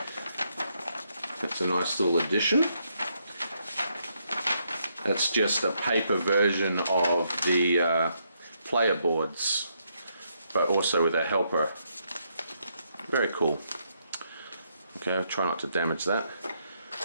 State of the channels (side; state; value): both; inverted; correlation -0.76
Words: That's a nice little addition. That's just a paper version of the player boards, but also with a helper. Very cool. Okay, I'll try not to damage that.